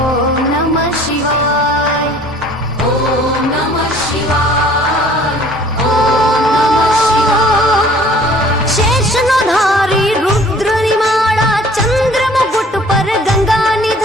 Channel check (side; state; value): both; normal; correlation 0.53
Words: नमः शिवाय, ॐ नमः शिवाय, ॐ नमः शिवाय। शेषनो धारी रुद्र निमाड़ा चंद्र मुकुट पर गंगा